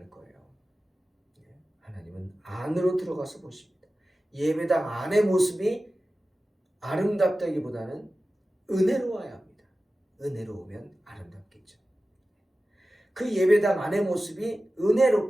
거예요. 하나님은 안으로 들어가서 보십니다. 예배당 안의 모습이 아름답다기보다는 은혜로워야 합니다. 은혜로우면 아름답겠죠. 그 예배당 안의 모습이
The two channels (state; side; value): normal; both; correlation 0.95